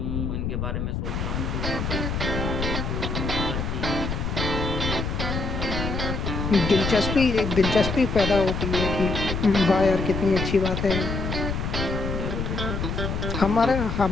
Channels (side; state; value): left; noise; rumble, 2 dB below the sound